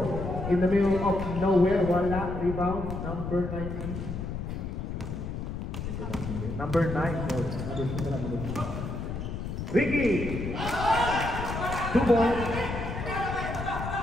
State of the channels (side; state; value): left; noise; rumble, 5 dB below the sound